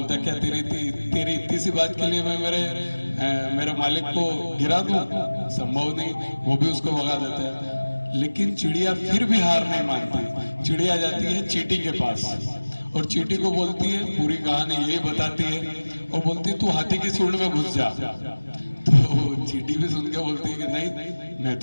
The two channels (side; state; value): both; inverted; correlation -1.00